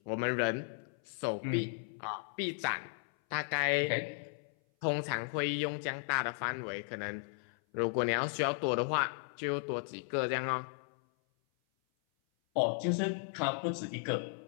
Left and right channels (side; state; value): right; silent; 54 dB below the other